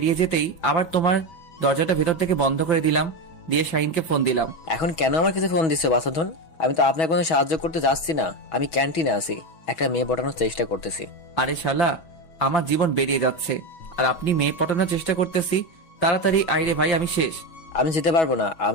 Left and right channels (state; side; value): late; right; 6.2 ms